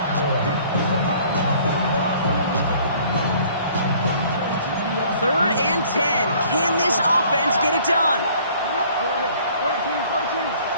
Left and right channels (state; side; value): inverted; both; correlation -0.55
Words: Third and 10. Can this offense get it done?